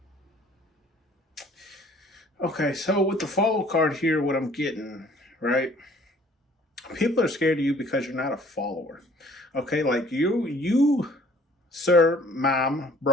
Okay, so with the follow card here, what I'm getting, right? People are scared of you because you're not a follower. Okay, like you, sir, mom,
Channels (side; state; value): both; normal; correlation 0.55